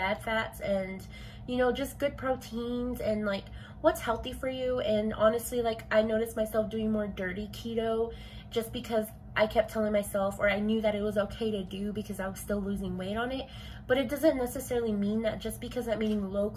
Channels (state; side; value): identical; both; correlation 1.00